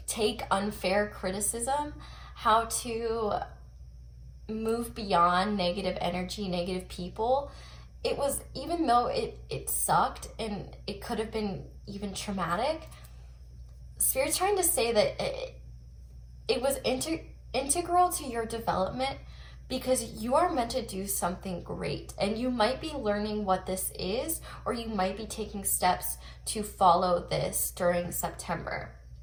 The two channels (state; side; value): identical; both; correlation 1.00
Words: take unfair criticism, how to move beyond negative energy, negative people. It was, even though it sucked and it could have been even traumatic, Spirit's trying to say that it was integral to your development, because you are meant to do something great, and you might be learning what this is, or you might be taking steps to follow this during September.